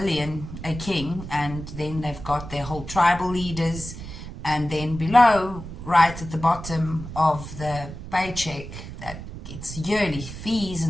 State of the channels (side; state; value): right; noise; rumble, 11 dB below the sound